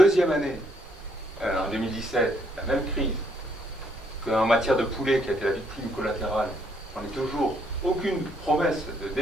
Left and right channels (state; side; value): normal; both; correlation 0.70